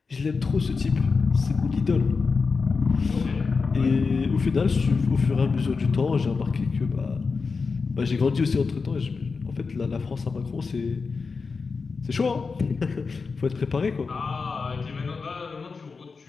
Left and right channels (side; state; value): right; quieter; 4.7 dB